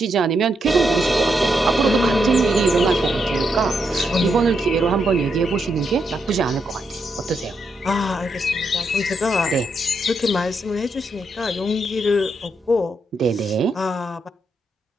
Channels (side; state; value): both; normal; correlation 0.80